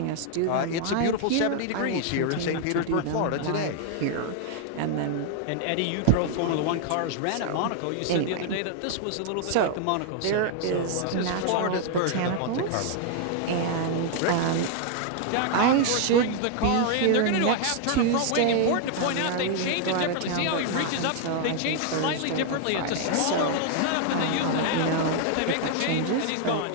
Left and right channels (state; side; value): different; both; correlation 0.00